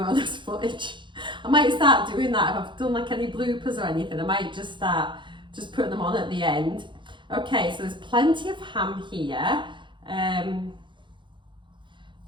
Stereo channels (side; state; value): left; late; 0.23 ms